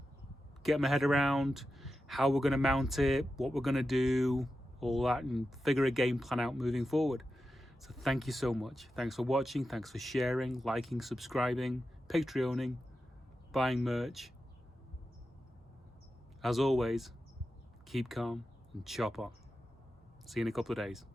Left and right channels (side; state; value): both; normal; correlation 0.91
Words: get my head around how we're going to mount it, what we're going to do, all that, and figure a game plan out moving forward. So thank you so much. Thanks for watching. Thanks for sharing, liking, subscribing, Patreoning, buying merch. As always, keep calm and chop on. See you in a couple of days.